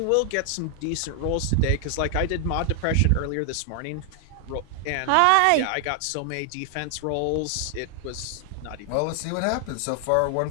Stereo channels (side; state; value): both; different; correlation 0.00